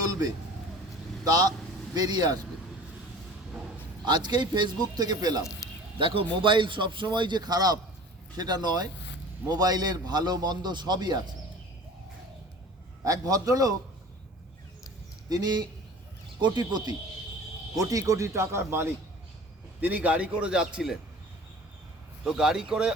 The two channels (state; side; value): normal; both; correlation 0.43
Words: তা বেরিয়ে আসবে। আজকেই ফেসবুক থেকে পেলাম। দেখো, মোবাইল সবসময় যে খারাপ সেটা নয়, মোবাইলের ভালো মন্দ সবই আছে। এক ভদ্রলোক, তিনি কোটিপতি, কোটি কোটি টাকার মালিক। তিনি গাড়ি করে যাচ্ছিলেন। তো গাড়ি করে